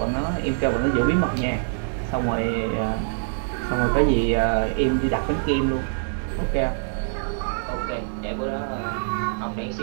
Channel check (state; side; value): silent; left; digital silence